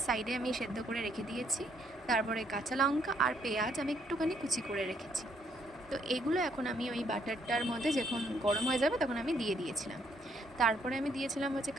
সাইডে আমি সেদ্ধ করে রেখে দিয়েছি। তারপরে কাঁচা লঙ্কা আর পেঁয়াজ আমি একটুখানি কুচি করে রেখেছি। তো এগুলো এখন আমি ওই বাটারটার মধ্যে যখন গরম হয়ে যাবে তখন আমি দিয়ে দিয়েছিলাম। তারপরে আমি দিয়েছিলাম হচ্ছে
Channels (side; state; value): both; normal; correlation 0.70